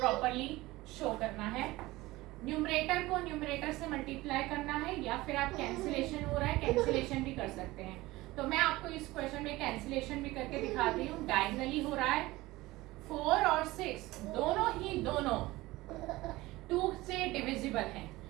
शो करना है। न्यूमरेटर को न्यूमरेटर से मल्टीप्लाई करना है, या फिर आप कैंसिलेशन हो रहा है कैंसिलेशन भी कर सकते हैं। तो मैं आपको इस क्वेश्चन में कैंसिलेशन भी करके दिखाती हूँ। डायगनली हो रहा है, 4 और 6 दोनों 2 से डिविजिबल हैं,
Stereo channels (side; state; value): left; quieter; 19.3 dB